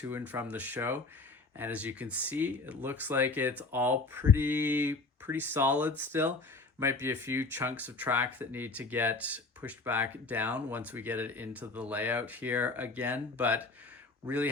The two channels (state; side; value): quieter; right; 3.6 dB